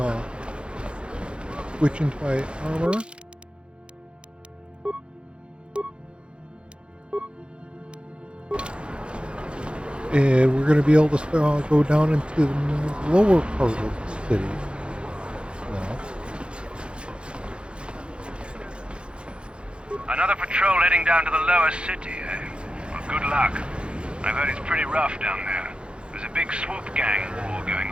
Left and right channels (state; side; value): late; left; 0.056 ms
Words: switch into my armor. And we're going to be able to go down into the lower part of the city now. Another patrol heading down to the lower city, eh? Well, good luck. I've heard it's pretty rough down there. There's a big swoop gang war going